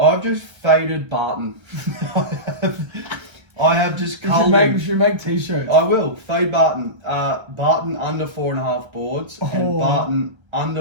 just faded Barton. I have just culled You should make t-shirts. I will. Fade Barton. Barton under 4.5 boards and Barton under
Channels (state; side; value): late; left; 1.3 ms